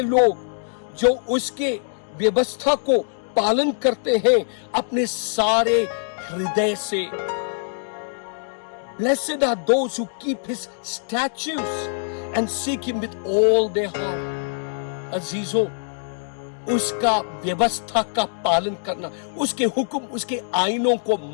लोग जो उसके व्यवस्था को पालन करते हैं अपने सारे हृदय से। Blessed are those who keep his statutes and seek him with all their heart। अजीजों, उसका व्यवस्था का पालन करना, उसके हुक्म, उसके आईनों को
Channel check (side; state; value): right; silent; digital silence